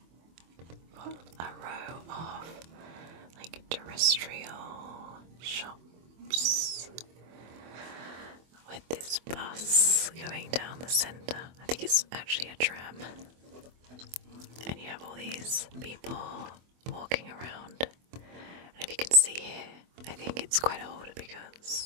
Got a row of like terrestrial shops with this bus going down the centre. I think it's actually a tram. And you have all these people walking around. And if you can see here, I think it's quite old because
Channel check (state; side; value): late; left; 24 ms